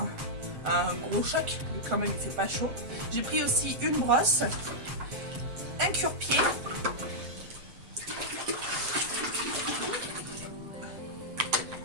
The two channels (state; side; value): late; left; 7.7 ms